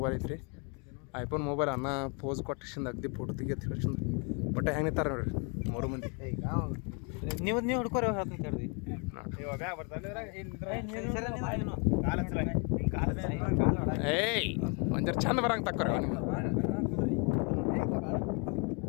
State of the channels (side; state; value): right; quieter; 34.9 dB